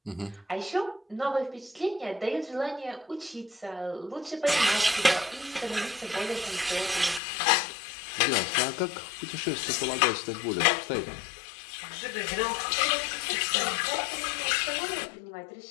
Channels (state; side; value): drops out; right; at 7.2 s